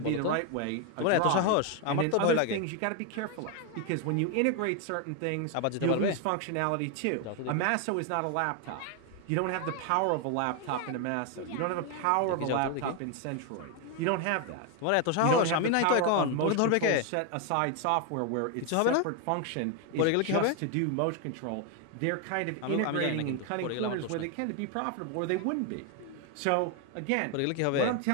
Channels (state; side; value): different; both; correlation 0.01